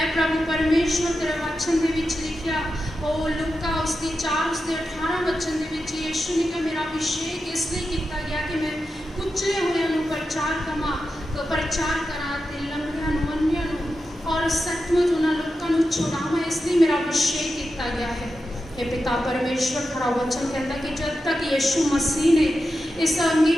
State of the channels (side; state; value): both; normal; correlation 0.90